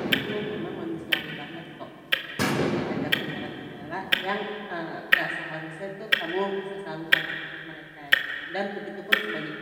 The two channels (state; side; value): identical; both; correlation 1.00